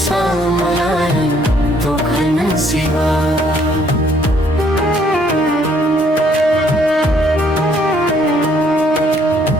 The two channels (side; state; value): both; normal; correlation 0.65